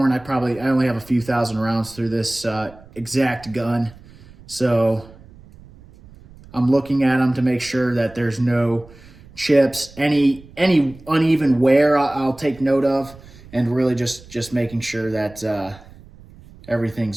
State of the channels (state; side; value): noise; right; rumble, 22 dB below the sound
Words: I only have a few thousand rounds through this exact gun. So I'm looking at them to make sure that there's no chips, any uneven wear I'll take note of, and really just making sure that